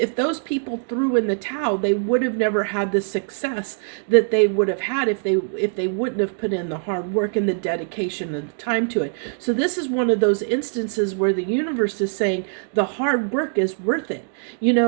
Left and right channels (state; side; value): silent; left; 64 dB below the other